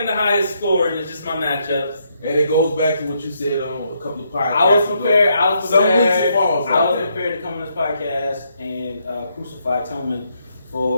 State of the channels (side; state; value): both; inverted; correlation -0.76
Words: to highest score, and it's just my matchups. And it goes back to what you said on a couple of podcasts. I was prepared. Some weeks it falls. I was prepared to come on this podcast and crucify Tillman